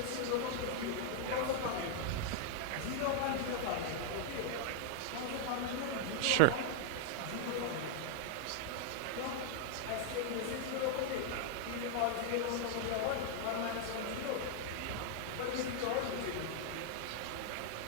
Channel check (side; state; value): both; different; correlation 0.00